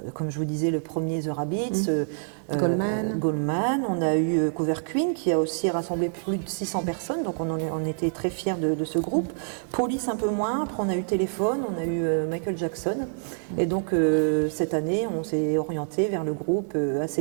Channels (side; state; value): left; silent; digital silence